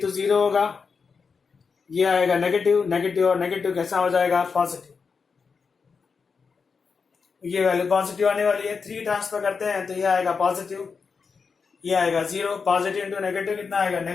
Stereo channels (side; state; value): right; quieter; 5.3 dB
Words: 0 होगा, ये आएगा नेगेटिव, नेगेटिव और नेगेटिव कैसा हो जाएगा? पॉजिटिव। ये वैल्यू पॉजिटिव आने वाली है। 3 ट्रांसफर करते हैं तो ये आएगा पॉजिटिव, ये आएगा 0। पॉजिटिव इंटू नेगेटिव कितना आएगा?